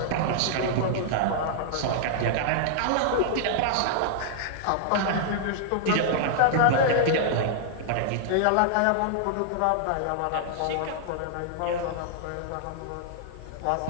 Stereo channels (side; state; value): both; different; correlation -0.01